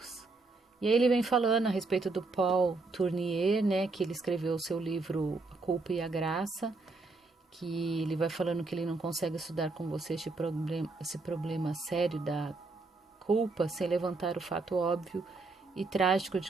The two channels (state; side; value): quieter; left; 3.6 dB